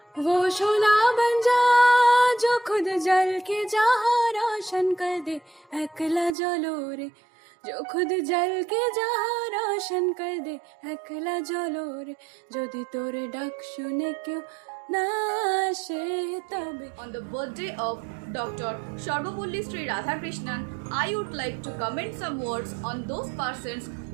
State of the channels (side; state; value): left; drops out; at 6.4 s